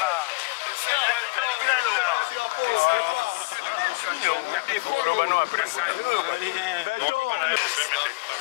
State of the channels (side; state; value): right; quieter; 27.1 dB